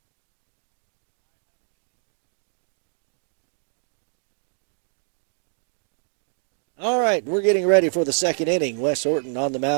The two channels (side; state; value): left; silent; 58 dB below the other